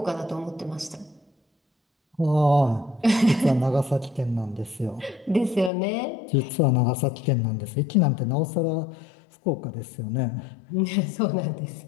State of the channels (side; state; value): right; drops out; at 5.7 s